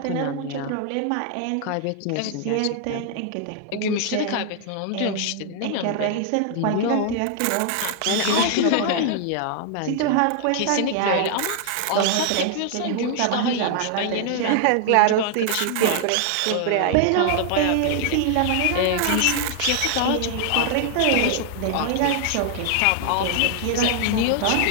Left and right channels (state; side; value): different; both; correlation 0.00